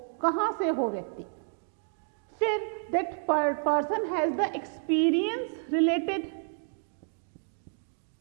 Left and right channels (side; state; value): left; silent; digital silence